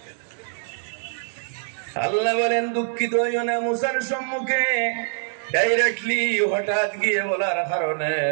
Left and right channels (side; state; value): left; silent; digital silence